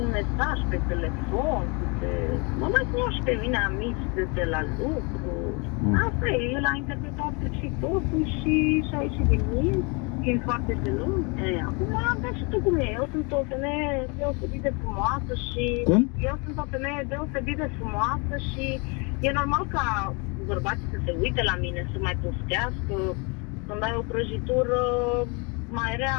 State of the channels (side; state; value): right; quieter; 31.4 dB